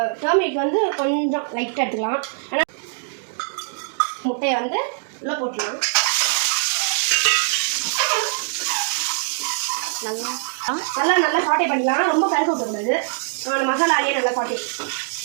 டர்மரிக் வந்து கொஞ்சம் லைட்டாக எடுத்துக்கலாம். ஆனால் முட்டையை வந்து உள்ளே போட்டுக்கலாம். நல்லா சாட்டே பண்ணிக்கலாம். ரொம்ப கருக்க விட்டுக்கூடாது. அந்த மசாலாலேயே நல்லா சாட்டே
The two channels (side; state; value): left; silent; digital silence